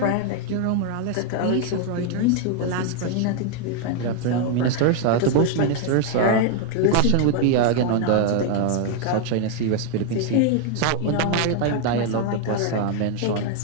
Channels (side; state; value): both; different; correlation 0.00